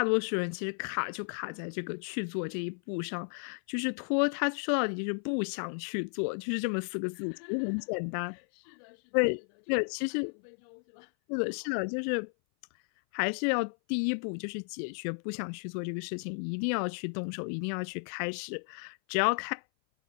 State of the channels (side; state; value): right; silent; 56 dB below the other